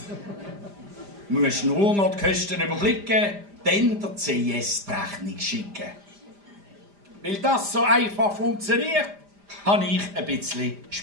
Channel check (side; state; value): left; late; 5.0 ms